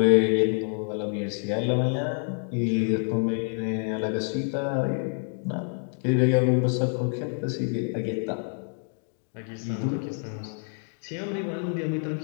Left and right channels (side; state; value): right; silent; 60 dB below the other